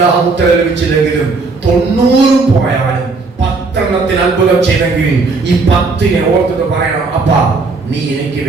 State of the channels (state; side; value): quieter; left; 4.0 dB